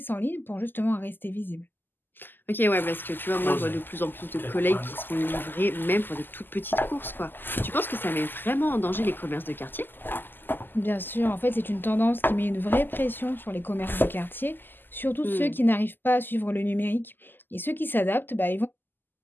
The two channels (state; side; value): late; right; 0.092 ms